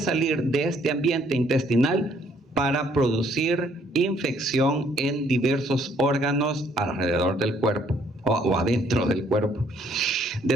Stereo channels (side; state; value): both; normal; correlation 0.65